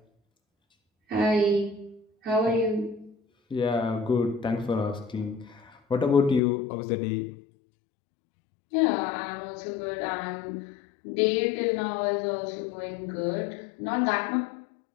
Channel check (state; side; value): drops out; right; at 6.4 s